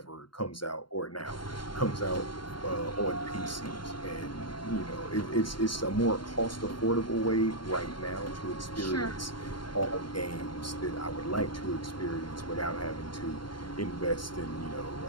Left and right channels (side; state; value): right; late; 0.72 ms